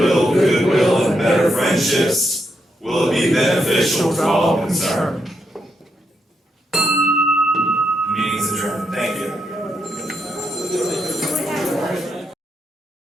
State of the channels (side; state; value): both; normal; correlation 0.80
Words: goodwill and better friendships? Will it be beneficial to all concerned?